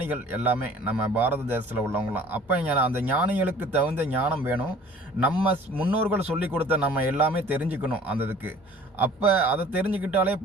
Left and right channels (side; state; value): both; normal; correlation 0.49